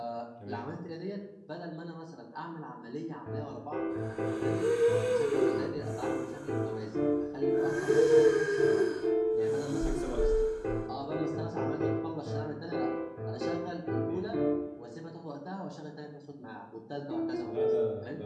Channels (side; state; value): both; identical; correlation 1.00